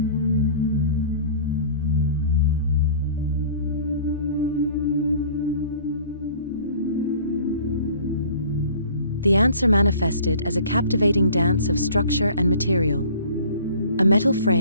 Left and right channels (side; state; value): both; inverted; correlation -0.48